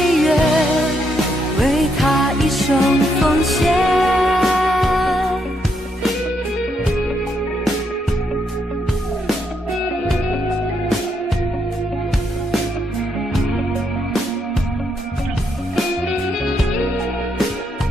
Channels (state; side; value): normal; both; correlation 0.77